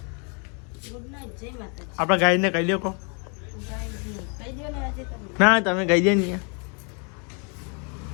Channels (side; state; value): right; quieter; 37.1 dB